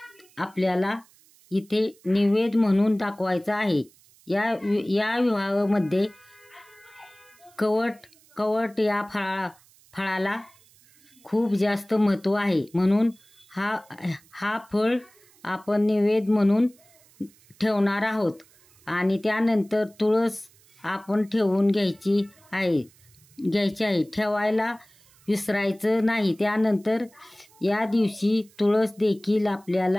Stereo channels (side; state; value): right; noise; hiss, 29 dB below the sound